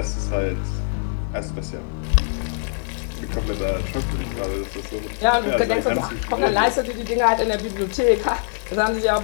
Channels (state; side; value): silent; right; 60 dB below the other